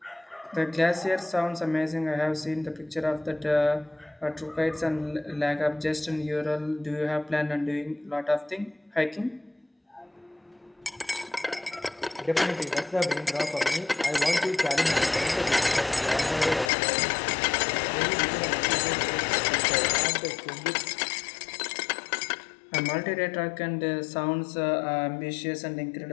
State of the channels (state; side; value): drops out; right; at 16.7 s